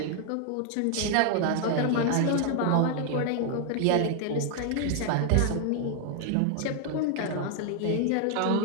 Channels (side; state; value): both; different; correlation 0.00